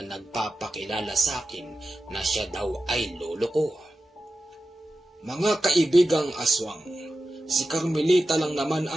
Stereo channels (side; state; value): both; normal; correlation 0.92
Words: nagpapakilala sa akin na siya daw ay lolo ko. Mga kaibigang aswang, si Carmelita lang naman